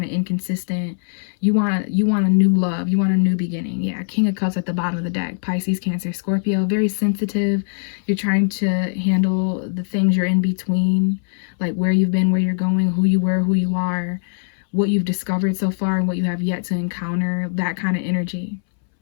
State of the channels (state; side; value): silent; right; 64 dB below the other